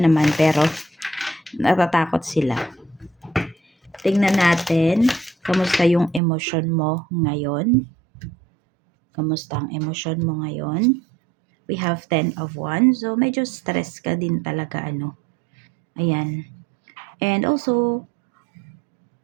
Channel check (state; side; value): drops out; left; at 6.2 s